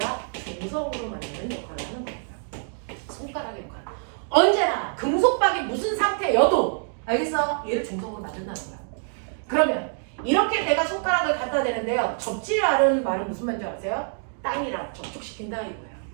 중성으로 만드는 역할을 하는 겁니다. 손가락의 역할. 언제나 금속박이 무슨 상태여도 알겠어? 얘를 중성으로 만든다는 거야. 그러면 이렇게 내가 손가락을 갖다 대는데요. 접지라는 말은 무슨 말인지 아세요? 땅이랑 접촉시킨다 이거예요.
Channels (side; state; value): left; silent; 61 dB below the other